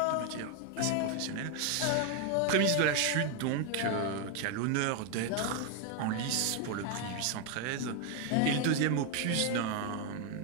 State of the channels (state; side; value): different; both; correlation 0.01